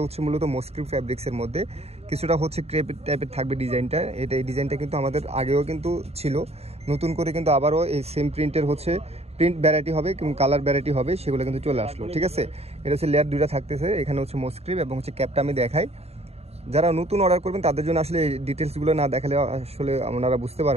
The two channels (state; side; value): late; left; 0.30 ms